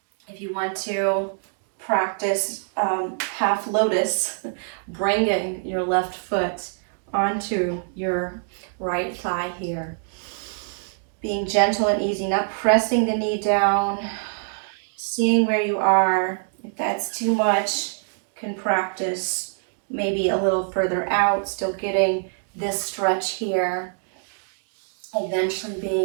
If you want to practice half lotus, bringing your left foot onto your right thigh here. Being gentle and easy, not pressing the knee down, seeing where you are. If that's too much, can practice maybe a little further out, still getting this stretch here. Eventually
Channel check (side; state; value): left; silent; digital silence